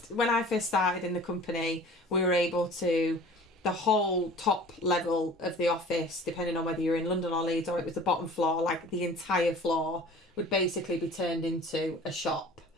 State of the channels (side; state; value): both; normal; correlation 0.45